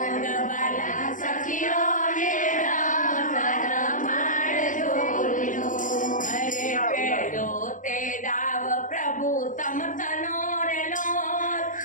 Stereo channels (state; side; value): late; right; 0.38 ms